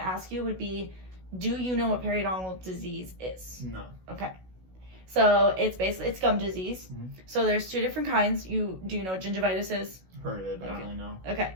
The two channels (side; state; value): left; late; 16 ms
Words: ask you would be, do you know what periodontal disease is? No. Okay. So it's gum disease. Mm-hmm. So there's two different kinds. Do you know what gingivitis is? Heard of it, but I don't really know. Okay.